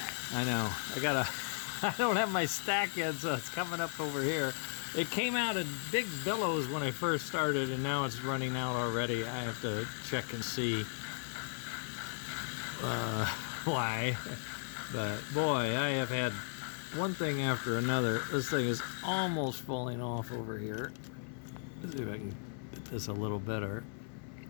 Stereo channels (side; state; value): right; silent; digital silence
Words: I know. I don't have my stack yet, so it's coming up over here. It came out in big billows when I first started, and now it's running out already. I have to check and see why. But boy, I have had one thing after another. This thing is almost falling off over here. Let's see if I can get this a little better.